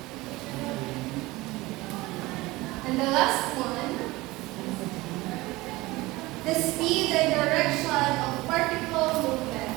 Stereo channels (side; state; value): left; quieter; 20.5 dB